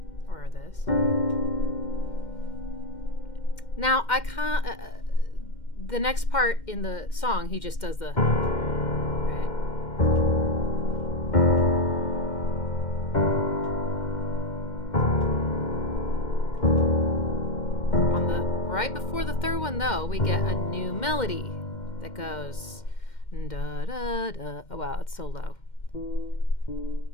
Or this. Now, I can't, the next part in the song, he just does the, right? On the, right before the third one, though, we get a new melody that goes, da da da. Oh, wow, it's so low.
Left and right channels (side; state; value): right; late; 2.1 ms